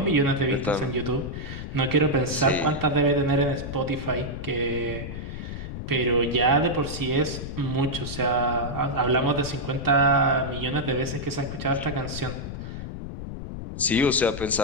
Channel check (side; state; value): left; noise; rumble, 8 dB below the sound